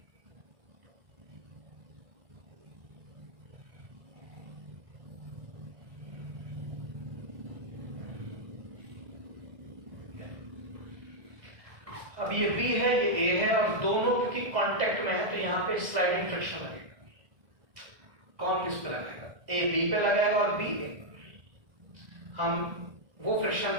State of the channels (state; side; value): late; left; 1.6 ms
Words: अब ये B है, ये A है, और दोनों क्योंकि कांटेक्ट में है तो यहाँ पे स्लाइडिंग फ्रिक्शन लगेगा। कौन किस पे लगाएगा, A B पे लगाएगा और B A। हम वो फ्रिक्शन